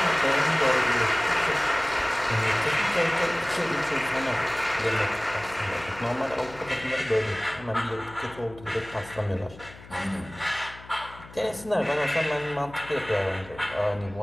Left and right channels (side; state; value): left; noise; hum, 19 dB below the sound